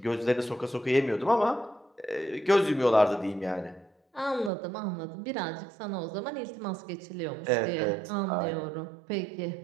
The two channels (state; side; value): drops out; left; at 4.5 s